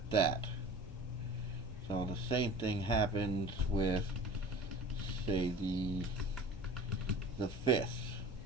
that. So the same thing happens with, say, the fifths.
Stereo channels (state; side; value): normal; both; correlation 0.40